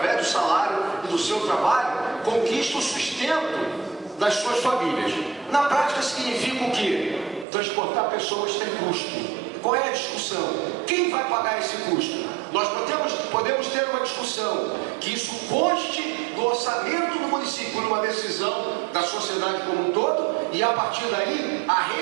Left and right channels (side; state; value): left; drops out; at 7.5 s